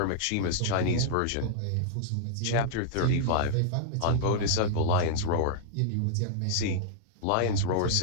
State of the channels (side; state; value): both; different; correlation -0.01